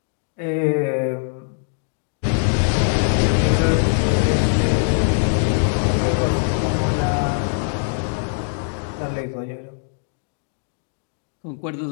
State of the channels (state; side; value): silent; right; digital silence